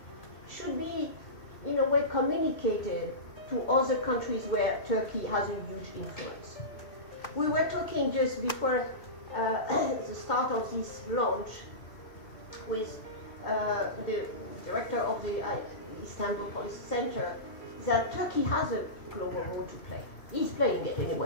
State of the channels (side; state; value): right; late; 2.6 ms